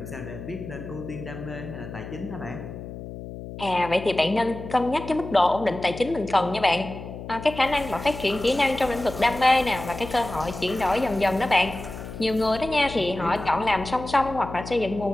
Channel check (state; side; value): noise; left; hum, 11 dB below the sound